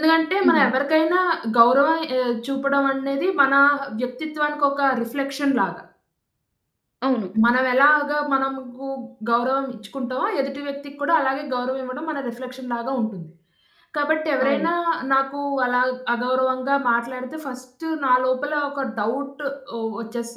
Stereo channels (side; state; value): both; identical; correlation 1.00